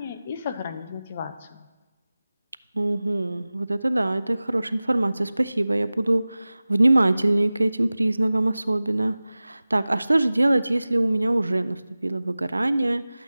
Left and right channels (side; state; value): both; inverted; correlation -0.97